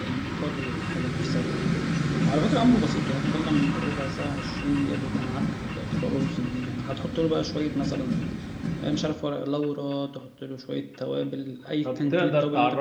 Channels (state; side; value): identical; both; correlation 1.00